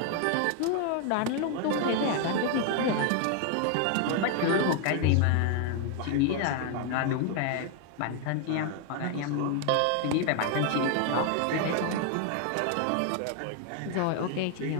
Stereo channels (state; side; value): different; both; correlation 0.01